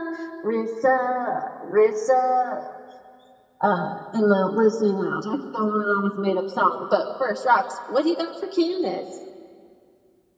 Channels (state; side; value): identical; both; correlation 1.00